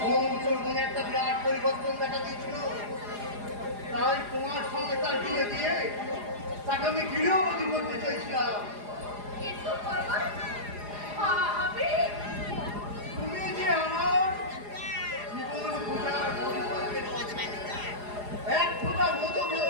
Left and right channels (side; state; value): left; late; 4.9 ms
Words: সুমন্তর মনে একটা বিরাট পরিবর্তন দেখা দিয়েছিল। তাই তোমার সঙ্গে তার বিয়ে দিয়ে তাকে আমি গৃহবধূ করতে চাইছিলাম। কিন্তু বাবা আমি তুমি যে আমার জীবন পূজার পরিকল্পের এক ফোঁটা মধু